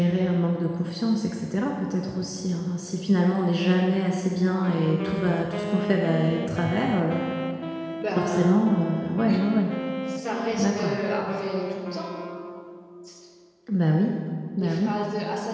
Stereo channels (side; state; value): both; identical; correlation 1.00